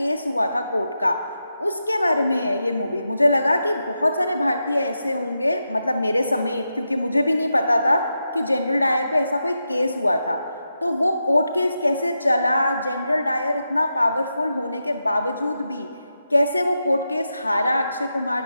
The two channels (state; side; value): inverted; both; correlation -0.87